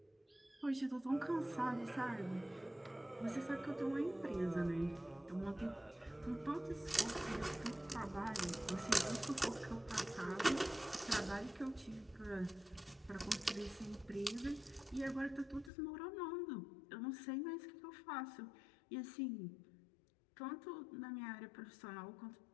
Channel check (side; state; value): right; drops out; at 15.7 s